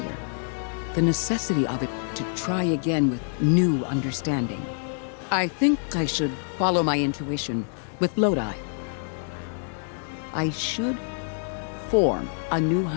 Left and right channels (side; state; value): right; silent; 61 dB below the other